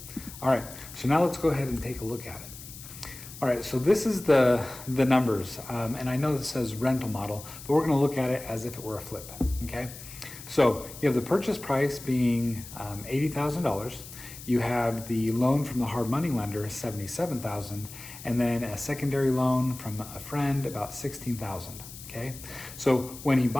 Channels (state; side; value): noise; left; hiss, 14 dB below the sound